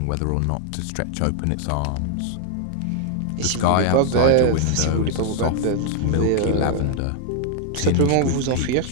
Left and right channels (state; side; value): different; both; correlation 0.00